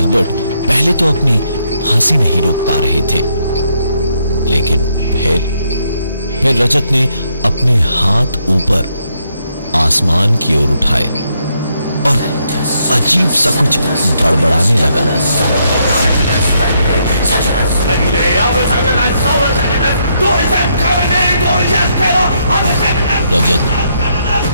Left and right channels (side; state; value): both; inverted; correlation -0.75